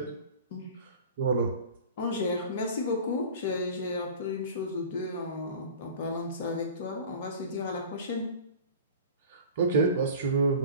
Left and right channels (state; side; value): inverted; both; correlation -0.39